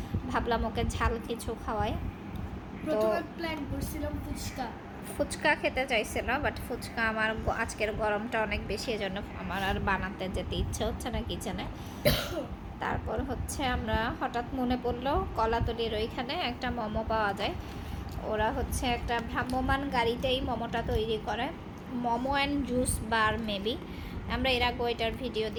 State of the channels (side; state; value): both; identical; correlation 1.00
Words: ভাবলাম ওকে ঝাল কিছু খাওয়াই। প্রথমে প্ল্যান করছিলাম ফুচকা। ফুচকা খেতে চাইছিল, বাট ফুচকা আমার আজকের গরমটা অনেক বেশি, এজন্য আমার আর বানাতে যেতে ইচ্ছে হচ্ছে না কিচেনে। তারপর হচ্ছে আমরা হঠাৎ মনে পড়লো কলাতলির ওইখানে একটা মোমো পাওয়া যায়। ওরা হচ্ছে একটা ভ্রাম্যমান গাড়িতেই মোমোটা তৈরি করে, momo and juice bar maybe. আমরা এর আগে এটার ভিডিও